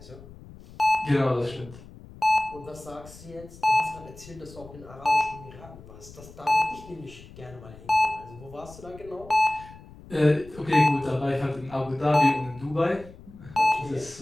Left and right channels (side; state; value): left; noise; rumble, 19 dB below the sound